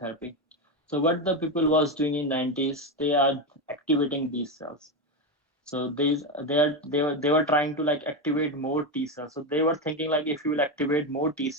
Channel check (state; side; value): normal; both; correlation 0.12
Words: So what the people was doing in 90s, they are activating these cells. So they were trying to like activate more T cells. So they were thinking like if you will activate more T